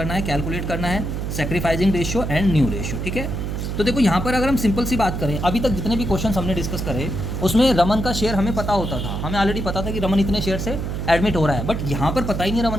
है, कैलकुलेट करना है sacrificing ratio and new ratio, ठीक है। तो देखो यहाँ पर अगर हम सिंपल सी बात करें, अभी तक जितने भी क्वेश्चन हमने डिस्कस करे उसमें रमन का शेयर हमें पता होता था, हमें ऑलरेडी पता था कि रमन इतने शेयर से एडमिट हो रहा है, बट यहाँ पर पता ही नहीं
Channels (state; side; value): noise; right; hum, 3 dB below the sound